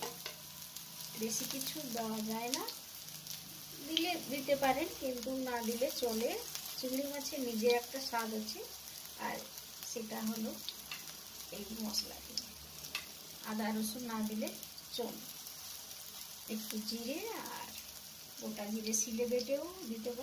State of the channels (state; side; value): identical; both; correlation 1.00